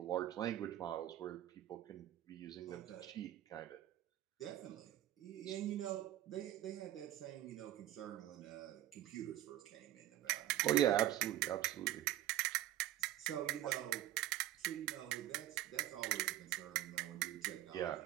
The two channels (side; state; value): left; quieter; 13.5 dB